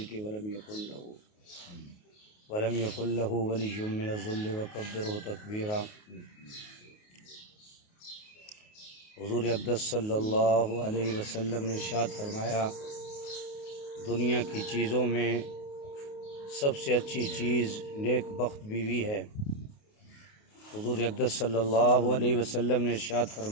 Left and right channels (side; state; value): right; late; 28 ms